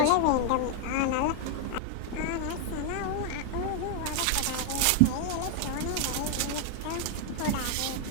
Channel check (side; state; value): both; different; correlation 0.00